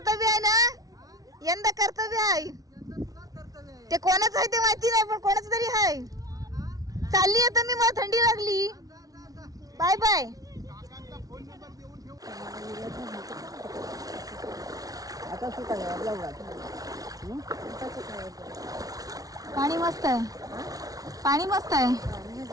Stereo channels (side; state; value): left; late; 0.18 ms